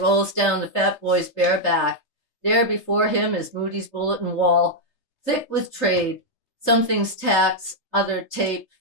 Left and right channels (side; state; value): right; late; 3.3 ms